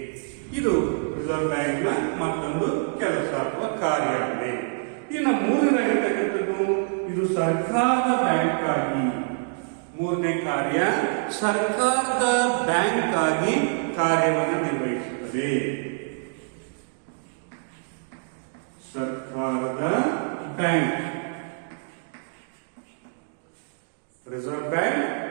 ಇದು ರಿಸರ್ವ್ ಬ್ಯಾಂಕ್ನ ಮತ್ತೊಂದು ಕೆಲಸ ಅಥವಾ ಕಾರ್ಯ ಆಗಿದೆ. ಇನ್ನು ಮೂರನೇದಾಗಿರ್ತಕ್ಕಂಥದ್ದು ಇದು ಸರ್ಕಾರದ ಬ್ಯಾಂಕ್ ಆಗಿ, ಮೂರನೇ ಕಾರ್ಯ ಸರ್ಕಾರದ ಬ್ಯಾಂಕ್ ಆಗಿ ಕಾರ್ಯವನ್ನು ನಿರ್ವಹಿಸುತ್ತದೆ. ಸರ್ಕಾರದ ಬ್ಯಾಂಕ್, ರಿಸರ್ವ್ ಬ್ಯಾಂಕ್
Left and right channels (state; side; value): silent; left; digital silence